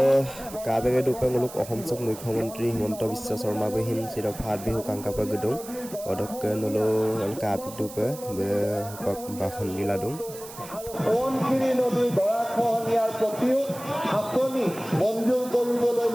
KBG dupang uluk Ahom Sok Mukhomantri Himanta Biswa Sarma behin sudah Phat Bihu Kangkapa Gedung odok dulu KBG dupa bahon diladung Subansiri নদীৰ গৰাখহনীয়াৰ প্ৰতিও আঁচনি মঞ্জুৰ কৰিবলৈ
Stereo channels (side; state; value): right; noise; hiss, 15 dB below the sound